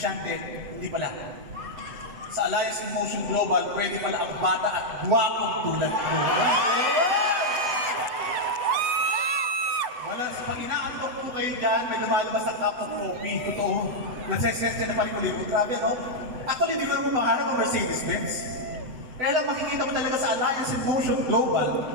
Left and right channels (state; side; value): late; left; 7.9 ms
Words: hindi pala. Sa Alliance in Motion Global, pwede pala ang bata at guwapong tulad ko. Wala, pag inaantok po kayo dyan, may lumalabas na cup of coffee. Totoo. Nagsesensya na palikulibo. Grabe, no? Actually, hindi ko naman pangarap ang Mercedes-Benz. Kaya lang makikita mo talaga sa Alliance in Motion Global,